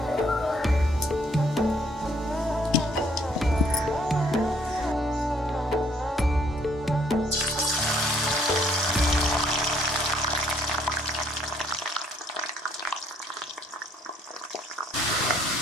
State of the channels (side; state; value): both; normal; correlation 0.65